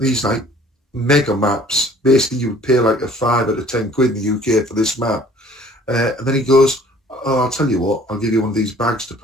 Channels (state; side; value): normal; both; correlation 0.53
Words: like mega maps. Basically, you would pay like a 5 out of 10 quid in the UK for this map, and then he goes, "Oh, I'll tell you what, I'll give you one of these bags to